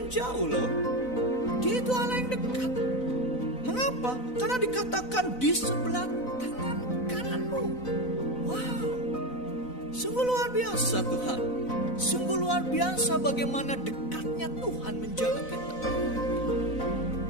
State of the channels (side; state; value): right; late; 4.0 ms